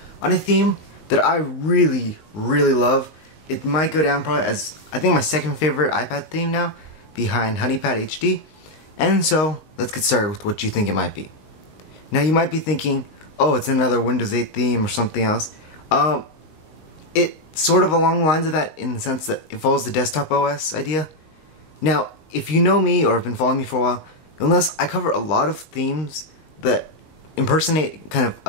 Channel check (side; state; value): right; late; 19 ms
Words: on a theme that I really love. It might go down probably as, I think, my second favorite iPad theme now, behind HoneyPad HD. And so, let's get started with what you think it might be. Now, you might be thinking, oh, it's another Windows 8 theme or something else. It's sort of along the lines of that in the sense that it follows the desktop OS idea. Now, if you know me or have been following me for a while, you'll notice I cover a lot of themes that impersonate kind of